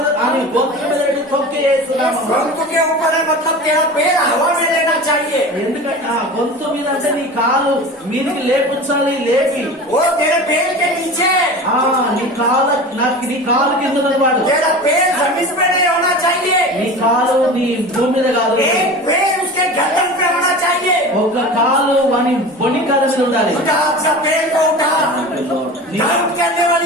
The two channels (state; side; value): normal; both; correlation 0.34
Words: గొంతు మీద పెట్టి తొక్కేస్తున్నాము. गొంతు के ऊपर है, मतलब तेरा पैर हवा में लेना चाहिए. ఎందుకంటే గొంతు మీద అంటే నీ కాలు మీదకి లేపుచ్చాలి. లేపి वो तेरे पैर के नीचे. నీ కాలు కింద ఉన్నవాడు. तेरा पैर जमीन पे नहीं होना चाहिए. నీ కాలు నీ భూమి మీద కాదు. एक पैर उसके गर्दन पे होना चाहिए. ఒక కాలు వాని బొని కాలు మీద ఉండాలి. उठा अपना पैर को उठा. डाउट करने